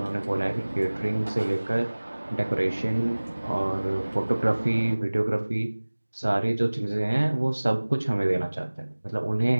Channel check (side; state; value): both; inverted; correlation -1.00